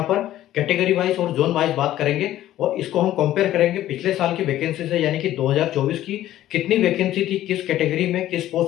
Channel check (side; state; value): right; quieter; 13.5 dB